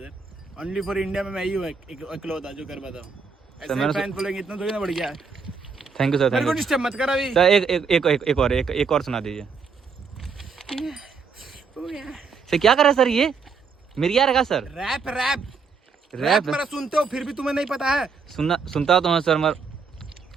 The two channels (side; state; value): left; quieter; 5.2 dB